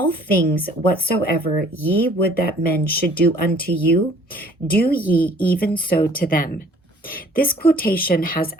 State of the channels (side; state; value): both; normal; correlation 0.55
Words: things whatsoever ye would that men should do unto you, do ye even so to them." This quotation has